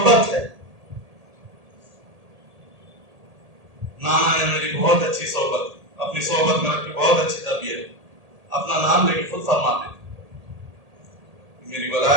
ہے. نانا نے میری بہت اچھی صحبت، اپنی صحبت میں رکھ کے بہت اچھی تربیت، اپنا نام لے کے خود فرماتے تھے میری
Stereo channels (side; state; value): left; late; 1.8 ms